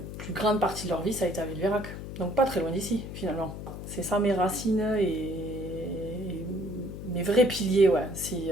plus grande partie de leur vie, ça a été à Villeverac. Donc pas très loin d'ici, finalement. C'est ça mes racines et mes vrais piliers, ouais.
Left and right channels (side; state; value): left; noise; hum, 9 dB below the sound